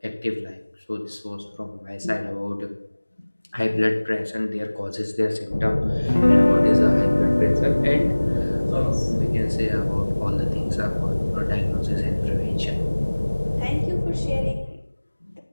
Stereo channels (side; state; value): both; inverted; correlation -1.00